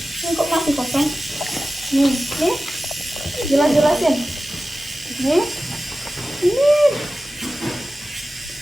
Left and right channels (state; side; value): normal; both; correlation 0.94